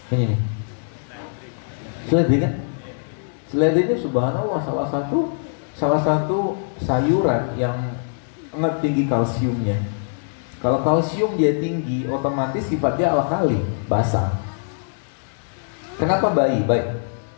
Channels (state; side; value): silent; right; 64 dB below the other